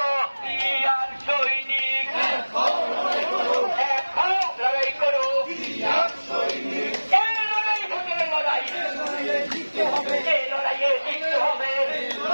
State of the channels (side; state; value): both; inverted; correlation -1.00